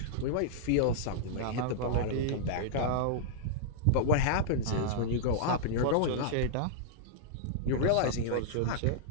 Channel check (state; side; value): different; both; correlation -0.02